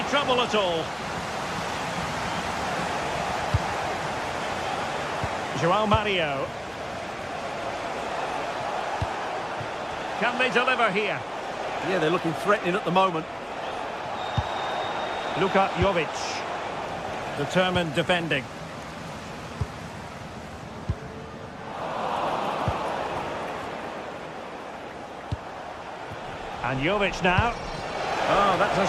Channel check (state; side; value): identical; both; correlation 1.00